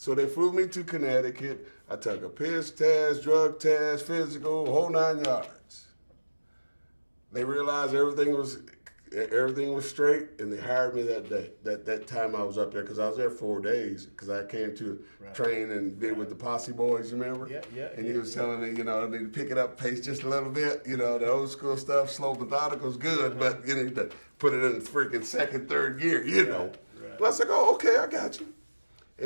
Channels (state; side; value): inverted; both; correlation -1.00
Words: they flew me to Connecticut. I took a piss test, drug test, physical, whole 9 yards. They realized everything was straight, and they hired me that day. That time I was up there, because I was there 4 days, because I came to train and did with the Posse Boys, you remember? Yeah. And he was telling me, I need to pick it up pace just a little bit. The old school stuff, slow, methodical is good, but you need to put it in freaking second, third gear, Right. But I was like, oh, okay, I got you.